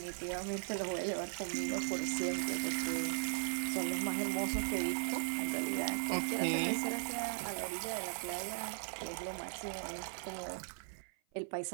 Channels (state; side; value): silent; left; 52 dB below the other